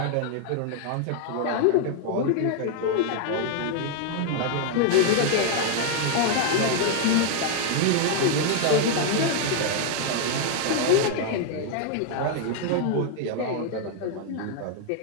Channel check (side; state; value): both; different; correlation 0.00